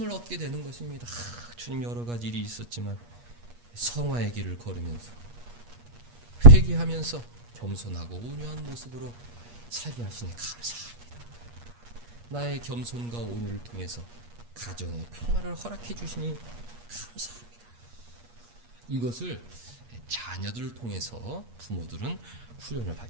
얻게 되는 것입니다. 주님 여러 가지 일이 있었지만 성화의 길을 걸으면서 회개하면서 겸손하고 온유한 모습으로 살게 하시니 감사합니다. 나의 겸손과 온유를 통해서 가정의 평화를 허락해 주시니 감사합니다. 이것을 자녀들을 통해서 부모들은 훈련을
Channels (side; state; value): left; late; 8.4 ms